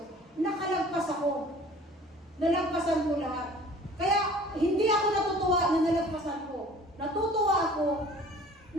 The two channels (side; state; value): both; normal; correlation 0.48